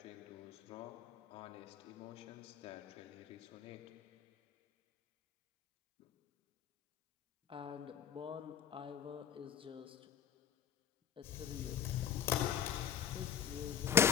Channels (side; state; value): right; quieter; 8.7 dB